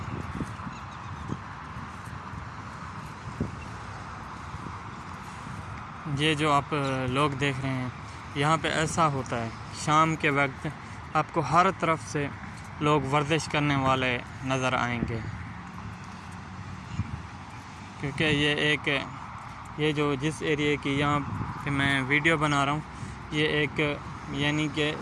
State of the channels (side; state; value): both; identical; correlation 1.00